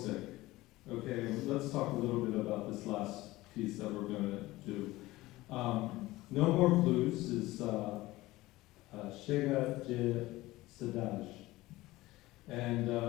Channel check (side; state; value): right; quieter; 18.5 dB